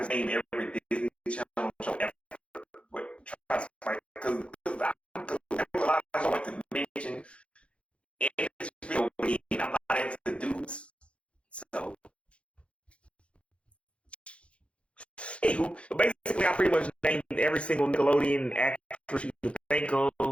name every Disney Channel show ever. But try to like because there's a lot I like to mention in this video. I'm not into dudes, so. Anywho, basically, I pretty much named every single Nickelodeon actress you can think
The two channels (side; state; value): right; late; 0.060 ms